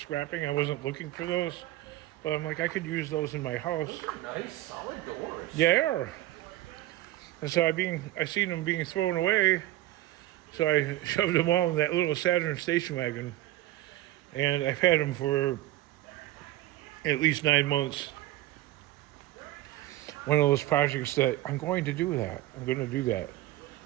I wasn't looking for those, but I'm like, I could use those in my house. Those are nice, solid doors. Yeah, they are. And so I seen them being thrown away, so I shoved them all in that little Saturn station wagon, and I've had them for at least 9 months. One of those projects that I'm going to do that.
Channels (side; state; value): left; quieter; 15.8 dB